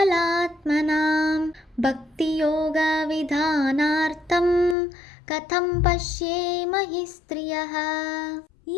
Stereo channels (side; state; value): right; drops out; at 4.8 s